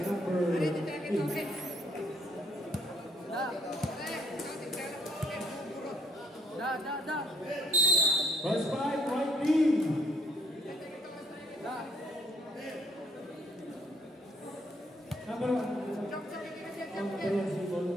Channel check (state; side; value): normal; both; correlation 0.68